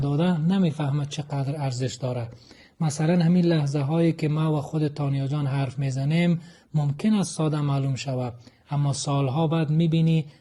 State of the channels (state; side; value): identical; both; correlation 1.00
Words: نمیفهمه چقدر ارزش داره. مثلا همین لحظه هایی که ما و خود تانیا جان حرف میزنیم ممکن است ساده معلوم شود، اما سالها بعد میبینی